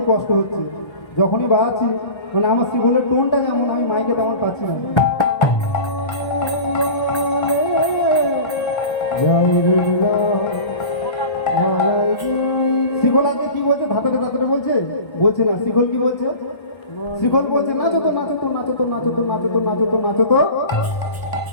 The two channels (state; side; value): late; right; 1.3 ms